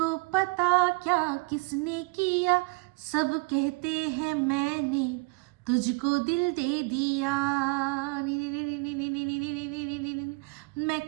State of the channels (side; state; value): left; quieter; 27.8 dB